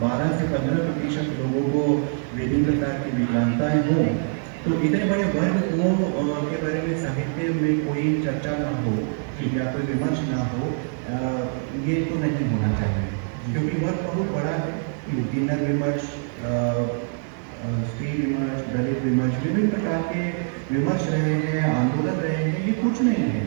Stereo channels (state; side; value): silent; left; 58 dB below the other